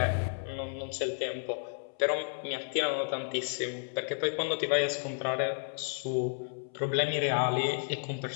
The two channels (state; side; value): silent; right; 56 dB below the other